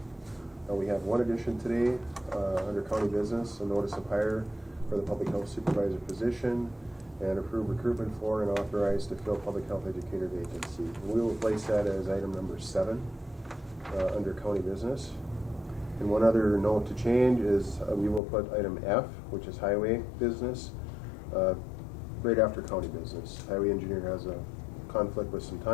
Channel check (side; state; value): right; drops out; at 18.2 s